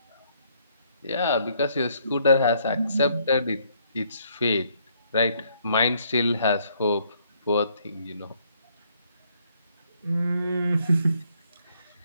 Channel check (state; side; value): inverted; both; correlation -0.69